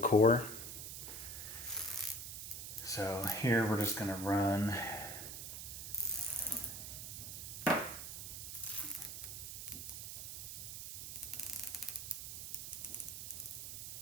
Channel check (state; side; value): noise; right; hiss, 7 dB below the sound